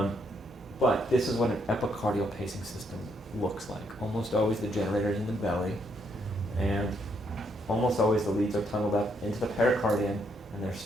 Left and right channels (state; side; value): normal; both; correlation 0.74